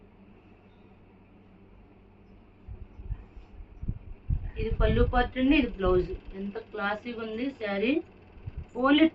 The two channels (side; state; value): both; identical; correlation 1.00